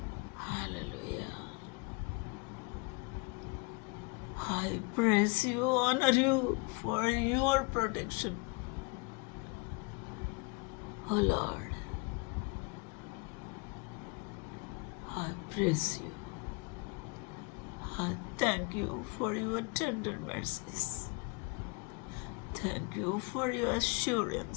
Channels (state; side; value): quieter; right; 30.6 dB